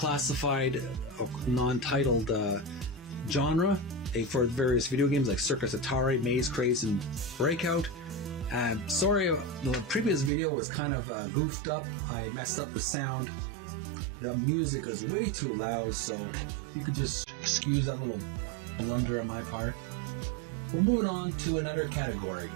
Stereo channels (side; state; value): left; drops out; at 10.3 s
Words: non-titled genre for various video games like Circus Atari, Maze Craze, and Breakout. Sorry, the previous video was kind of goofed up. I messed up the sound. The music is way too loud, so if you could just excuse that little blunder on my part. We're moving on to another category.